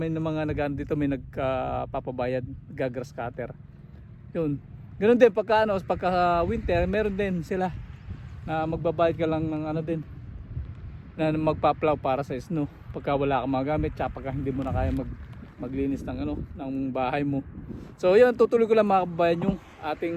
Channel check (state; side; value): identical; both; correlation 1.00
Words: mga nagano dito, may nagpapabayad, grass cutter. Yun. Ganun din pagka winter, meron din sila na magbabayad ka lang ng din na magpa-plow para sa snow pagka wala kang mga gamit, tsaka pagka hindi mo na kaya maglinis ng bahay mo. So yun, tutuloy ko lang mga kababayan yung